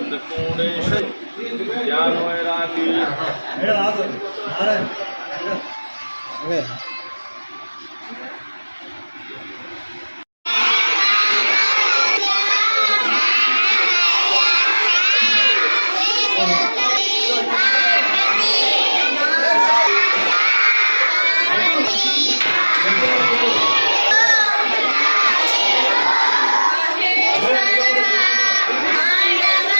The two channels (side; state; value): both; inverted; correlation -1.00